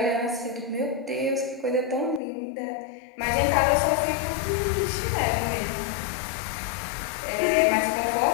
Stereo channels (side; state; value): right; drops out; at 2.2 s